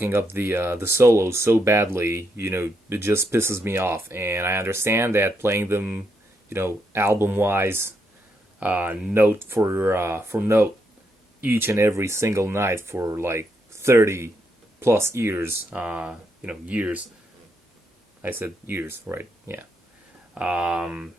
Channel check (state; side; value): normal; both; correlation 0.78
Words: up the solos so badly. It just pisses me off, and I understand that playing them, album wise, note for note, each and every single night for like 30 plus years. Years. I said years, right? Yeah. Um,